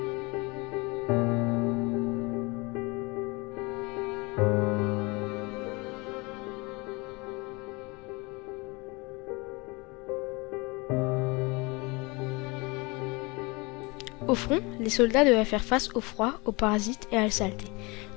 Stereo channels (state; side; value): quieter; right; 26.5 dB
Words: Au front, les soldats devaient faire face au froid, aux parasites et à la saleté.